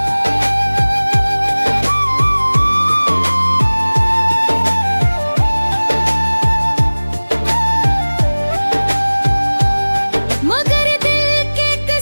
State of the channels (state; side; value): inverted; both; correlation -1.00